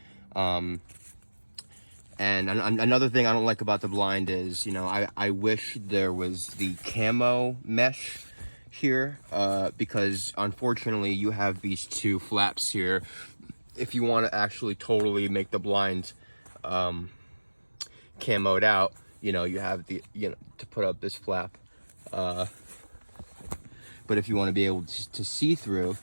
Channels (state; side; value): inverted; both; correlation -1.00